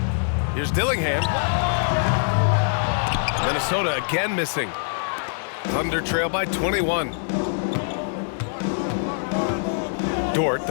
Here's Dillingham. Minnesota again missing. Thunder trail by 21. Dort,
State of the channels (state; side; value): silent; right; digital silence